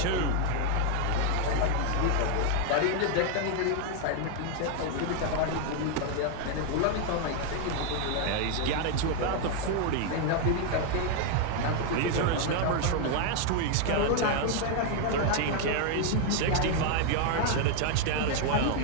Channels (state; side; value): different; both; correlation 0.01